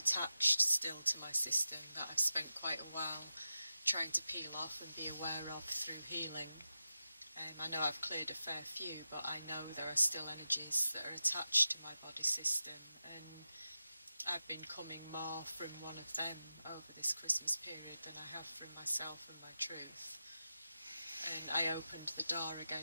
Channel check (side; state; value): both; inverted; correlation -0.90